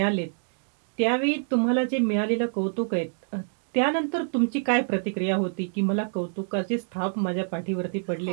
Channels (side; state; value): left; silent; digital silence